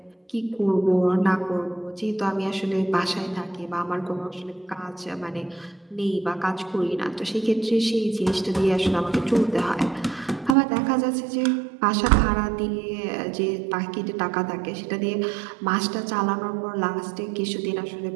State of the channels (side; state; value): left; drops out; at 10.6 s